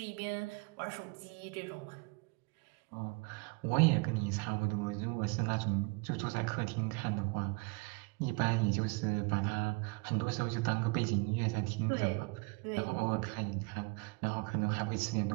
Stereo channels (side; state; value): left; quieter; 29.7 dB